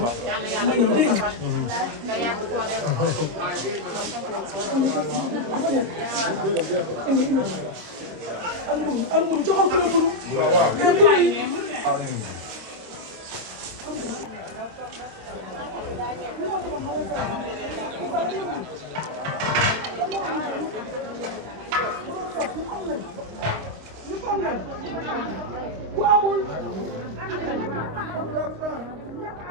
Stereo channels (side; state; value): left; late; 25 ms